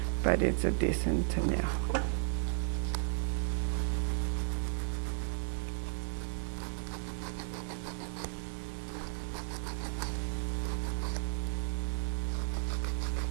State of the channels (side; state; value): left; silent; digital silence